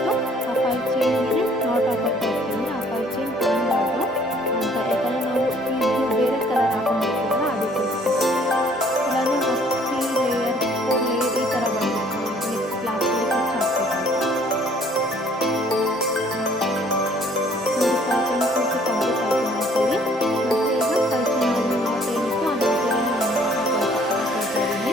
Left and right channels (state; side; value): normal; both; correlation 0.58